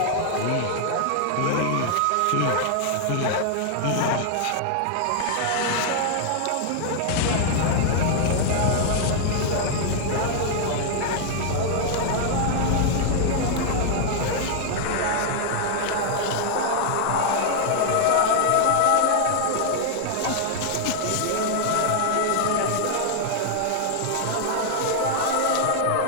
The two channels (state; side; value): different; both; correlation 0.00